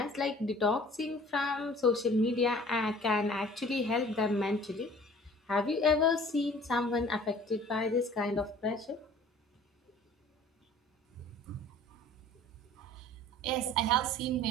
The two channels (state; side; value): normal; both; correlation 0.49